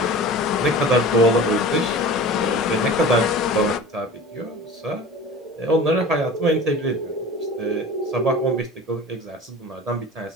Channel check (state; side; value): normal; both; correlation 0.37